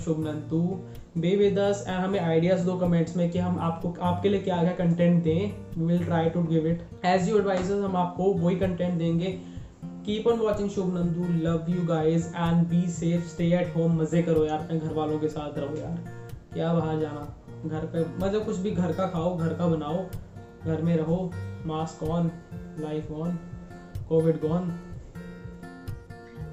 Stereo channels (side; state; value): both; identical; correlation 1.00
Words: Shubh Nandu, be with us and हमें आइडियाज दो कमेंट्स में कि हम आपके लिए क्या कंटेंट दें। We will try to give it as you advisors, हम आपको वही कंटेंट देंगे। Keep on watching Shubh Nandu, love you guys and be safe, stay at home, मजे करो यार, अपने घर वालों के साथ रहो यार, क्या बाहर जाना, घर पे मतलब कुछ भी घर का खाओ, घर का बनाओ, घर में रहो, mask on, life on, covid gone.